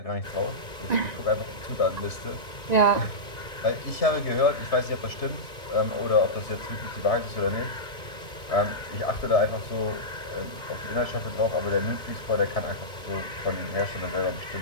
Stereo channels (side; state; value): both; normal; correlation -0.13